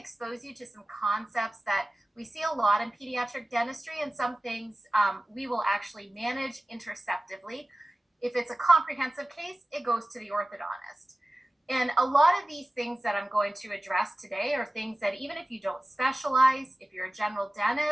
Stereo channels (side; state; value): both; normal; correlation 0.97